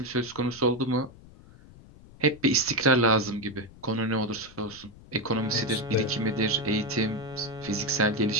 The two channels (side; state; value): left; noise; rumble, 21 dB below the sound